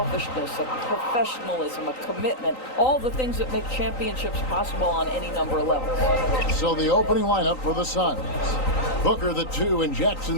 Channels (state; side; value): late; right; 3.9 ms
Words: a professionalism, a commitment. All the things that make championships possible on any number of levels. So the opening lineup for the Suns. Booker the 2 and Jackson